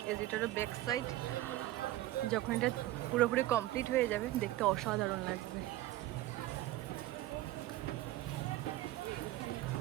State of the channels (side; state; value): left; quieter; 15.9 dB